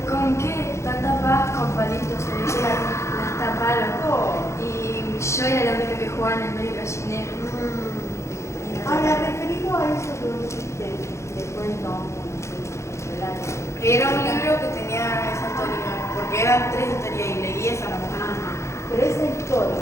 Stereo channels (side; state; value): right; late; 0.14 ms